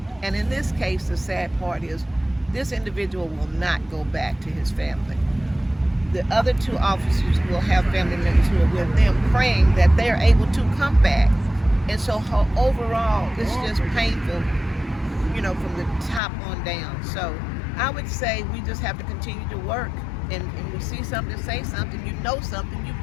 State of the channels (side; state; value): right; drops out; at 16.2 s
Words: And in this case, the sad part is this individual will not go back to his family. The other 2 officers will have family members who are with them, praying that they're able to come back. And so overall, it's just painful, from the top on down. So I would say we just have to continue to work. And we see something, say something, something, you've